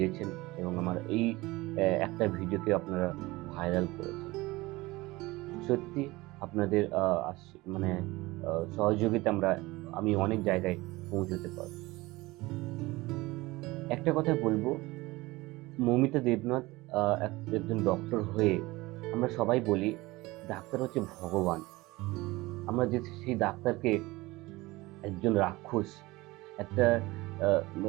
এবং আমার এই একটা ভিডিওকে আপনারা ভাইরাল করেছেন। সত্যি আপনাদের মানে সহযোগিতা আমি অনেক জায়গায় পৌঁছতে পারব। একটা কথা বলবো, মৌমিতা দেবনাথ একজন ডক্টর হয়ে আমরা সবাই বলি ডাক্তার হচ্ছে ভগবান। আমরা যে সেই ডাক্তারকে একজন রাক্ষস, একটা আহ,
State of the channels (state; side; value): quieter; left; 20.8 dB